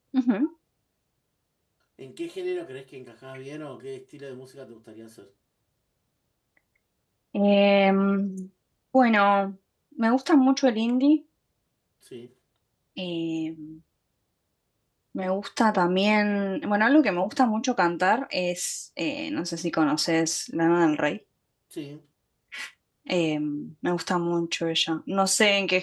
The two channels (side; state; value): both; identical; correlation 1.00